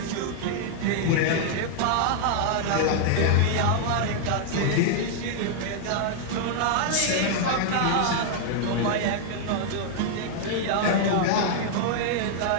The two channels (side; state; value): both; different; correlation -0.01